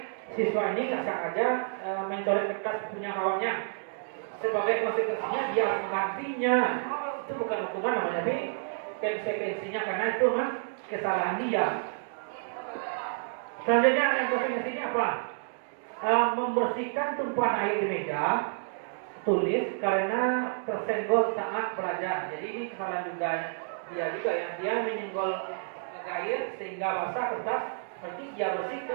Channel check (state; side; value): silent; left; digital silence